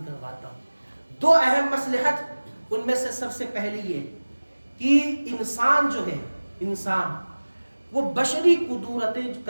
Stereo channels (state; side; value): inverted; both; correlation -1.00